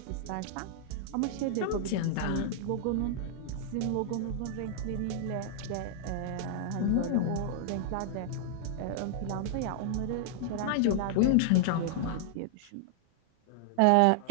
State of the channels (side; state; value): both; different; correlation -0.01